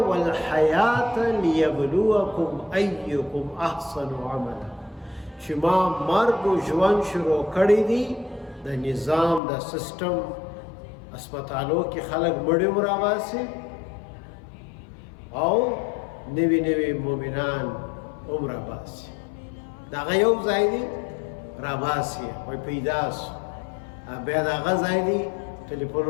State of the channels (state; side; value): drops out; right; at 9.4 s